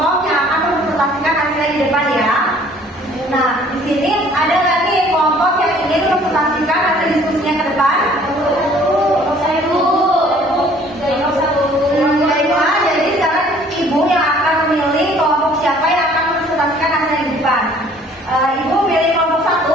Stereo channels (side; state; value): both; normal; correlation 0.56